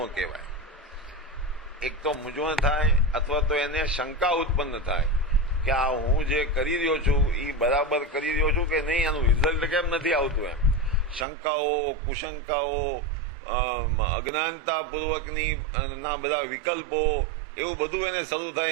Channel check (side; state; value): left; drops out; at 11.2 s